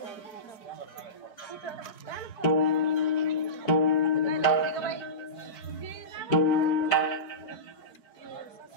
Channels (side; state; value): right; late; 4.7 ms